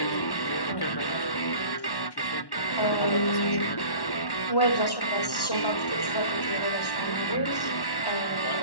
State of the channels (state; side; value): late; right; 1.1 ms